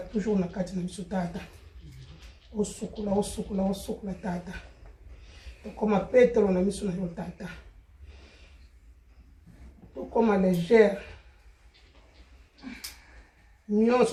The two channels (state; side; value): identical; both; correlation 1.00